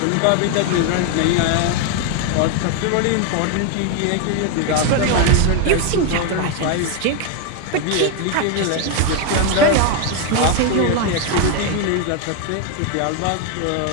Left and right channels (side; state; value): both; different; correlation 0.01